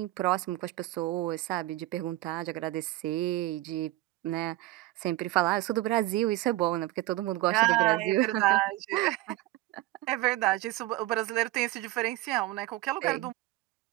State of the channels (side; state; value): left; quieter; 17.4 dB